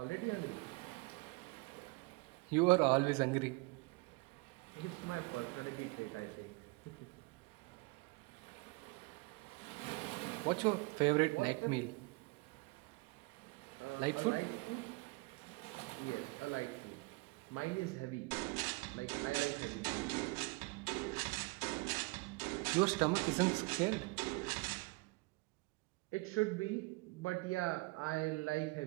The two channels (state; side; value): quieter; left; 26.9 dB